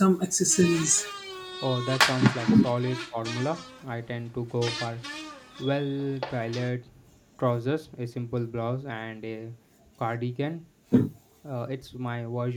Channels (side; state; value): both; identical; correlation 1.00